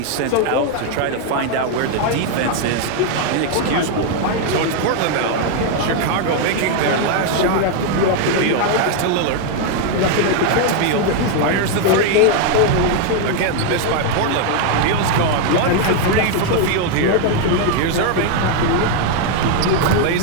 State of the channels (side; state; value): both; different; correlation 0.01